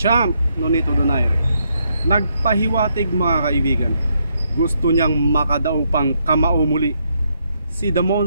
Nonito Donaire nagpahiwatig mga kaibigan. Gusto niyang makadaw pang kamao muli si The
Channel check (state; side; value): inverted; both; correlation -0.76